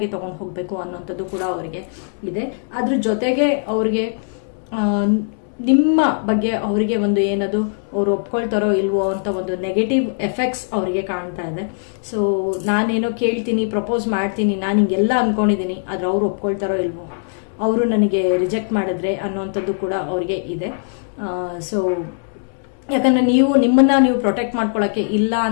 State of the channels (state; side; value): silent; right; digital silence